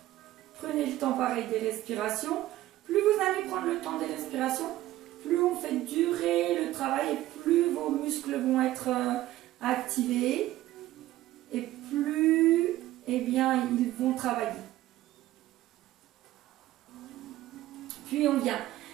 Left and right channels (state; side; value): quieter; left; 15.3 dB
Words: Prenez le temps pareil des respirations. Plus vous allez prendre le temps des respirations, plus on fait durer le travail et plus vos muscles vont être activés et plus bien, ils vont travailler. Puis on vient